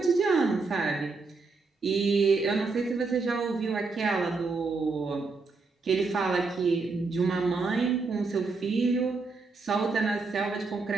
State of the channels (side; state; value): left; quieter; 4.1 dB